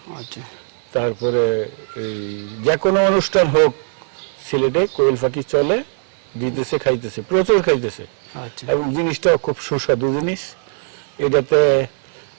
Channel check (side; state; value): left; silent; 55 dB below the other